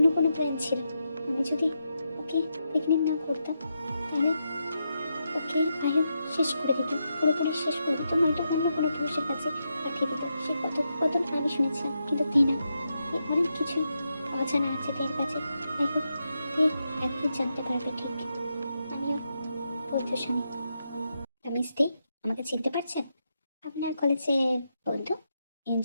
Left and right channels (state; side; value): inverted; both; correlation -0.84